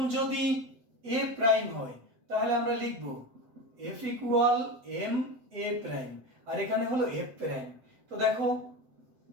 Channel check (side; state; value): left; late; 7.8 ms